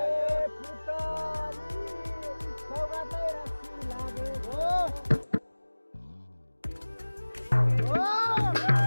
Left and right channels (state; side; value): inverted; both; correlation -1.00